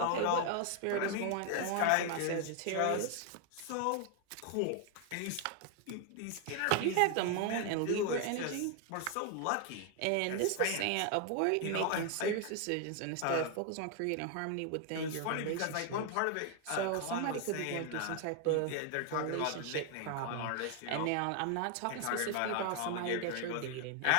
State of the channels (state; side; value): different; both; correlation 0.00